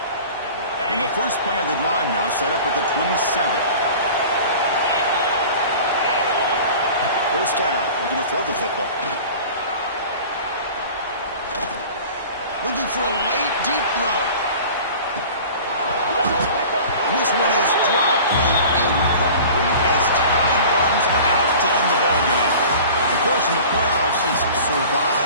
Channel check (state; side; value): inverted; both; correlation -0.41